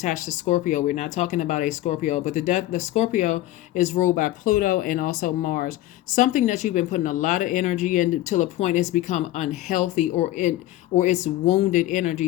to Scorpio. We're not talking about a Scorpio, but the Scorpio is ruled by Pluto and also Mars. Something that you've been putting a lot of energy in till a point it's become unhealthy, or it's wounded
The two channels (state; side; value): quieter; right; 15.2 dB